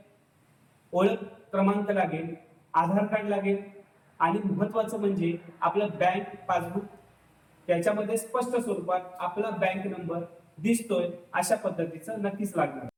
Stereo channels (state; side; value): identical; both; correlation 1.00